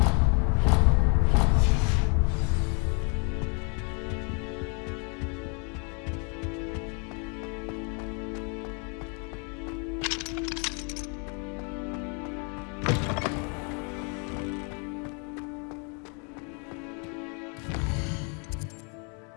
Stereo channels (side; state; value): right; quieter; 36.7 dB